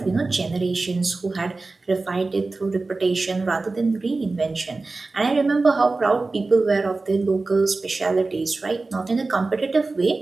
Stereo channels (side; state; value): left; quieter; 3.5 dB